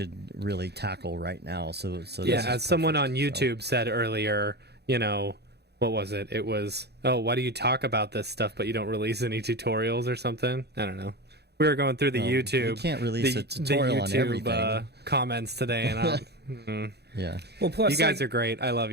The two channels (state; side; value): late; left; 0.48 ms